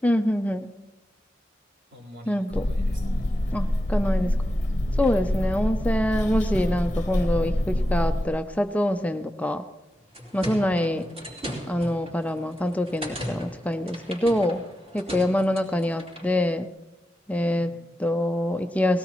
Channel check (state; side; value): normal; both; correlation 0.90